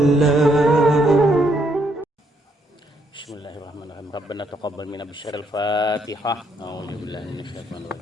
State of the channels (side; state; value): both; normal; correlation 0.73